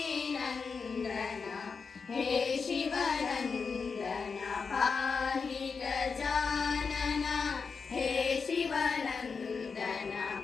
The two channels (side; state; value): right; quieter; 5.2 dB